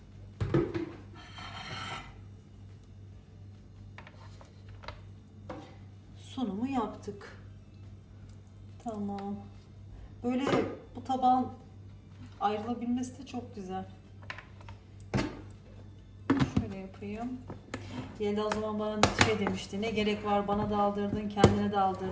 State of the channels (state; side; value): identical; both; correlation 1.00